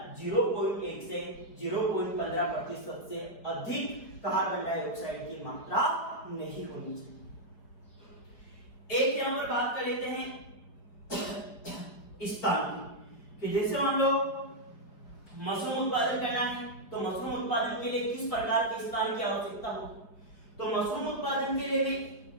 0.1 से 0.15% से अधिक कार्बन डाइऑक्साइड की मात्रा नहीं होनी चाहिए। एक यहाँ पर बात कर लेते हैं स्थान की, कि जैसे हम लोग मशरूम उत्पादन करना है तो मशरूम उत्पादन के लिए किस प्रकार के स्थान की आवश्यकता हो, तो मशरूम उत्पादन के लिए भी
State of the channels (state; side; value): late; right; 4.9 ms